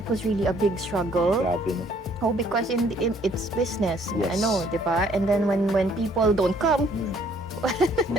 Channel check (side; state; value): both; normal; correlation 0.62